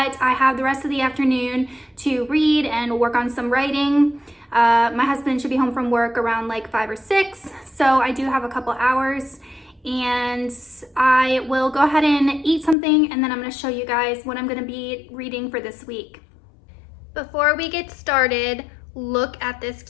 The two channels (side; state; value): right; drops out; at 12.8 s